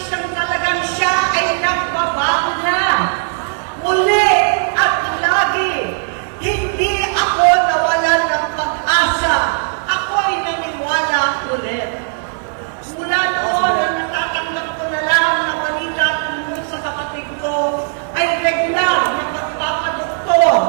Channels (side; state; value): left; silent; 68 dB below the other